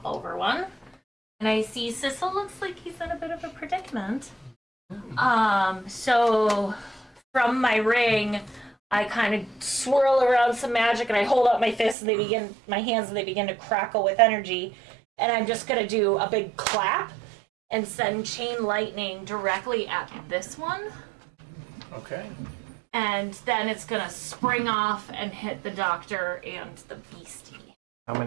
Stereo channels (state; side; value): drops out; left; at 12.0 s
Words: over one. And I see Sissel looks like he's in a bit of a predicament. So from my ring, I kind of swirl around some magic and I hold out my fists and my hands and they begin to crackle with energy. And I'm just gonna do a big clap and send chain lightning directly at this one. Okay. And then it's gonna spring off and hit the doctor and the beastie. How